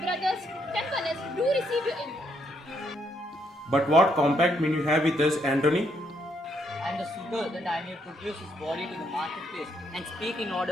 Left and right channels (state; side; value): normal; both; correlation 0.74